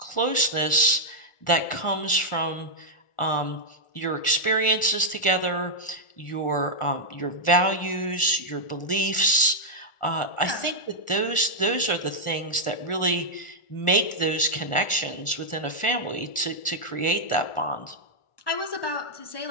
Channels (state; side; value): late; right; 1.4 ms